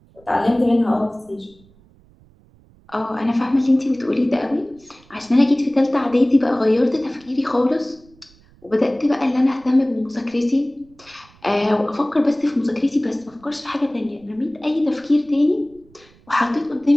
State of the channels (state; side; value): noise; right; rumble, 29 dB below the sound